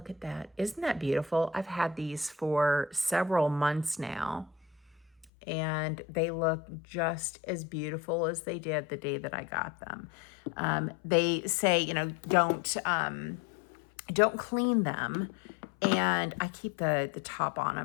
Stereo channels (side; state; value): right; drops out; at 5.2 s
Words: at that. Isn't that beautiful? I've had these for several months now, and they look just as beautiful as they did the day that I got them. They say, don't clean them, and I keep the top on